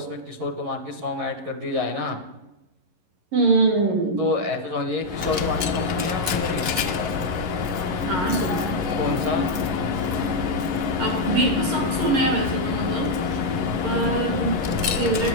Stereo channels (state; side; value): late; left; 11 ms